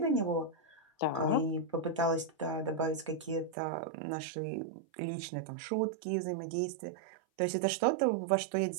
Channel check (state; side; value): drops out; left; at 3.6 s